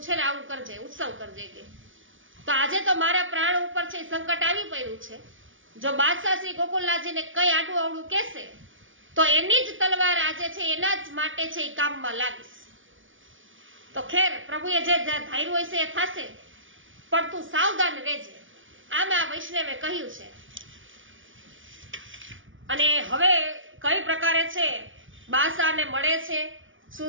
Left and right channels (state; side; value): late; left; 0.57 ms